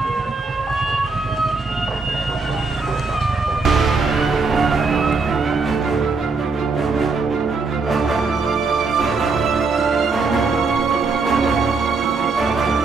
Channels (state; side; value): quieter; left; 4.2 dB